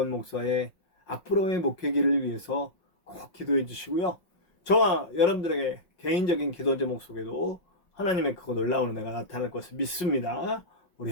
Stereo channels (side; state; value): right; late; 5.5 ms